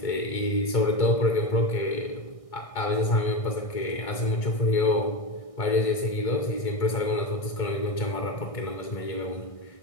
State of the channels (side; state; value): right; late; 1.6 ms